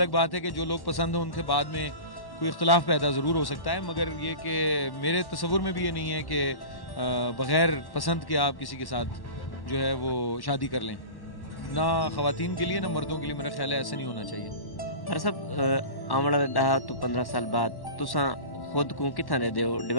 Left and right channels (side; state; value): right; late; 1.1 ms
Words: बात है कि जो लोग पसंद हो उनके बाद में कोई इख्तलाफ पैदा ज़रूर हो सकता है, मगर ये कि मेरे तसव्वुर में भी ये नहीं है कि बग़ैर पसंद के आप किसी के साथ जो है वो शादी कर लें। ना ख़वातीन के लिए ना मर्दों के लिए मेरा ख्याल है ऐसे नहीं होना चाहिए। हर सब आने वाले 10 तो 15 साल बाद तुसां खुद को कितना दे हो?